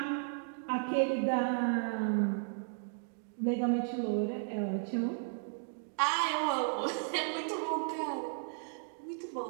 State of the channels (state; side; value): silent; left; digital silence